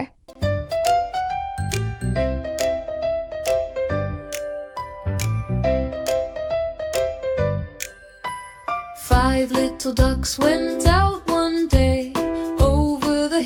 Five little ducks went out one day, over the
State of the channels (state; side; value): identical; both; correlation 1.00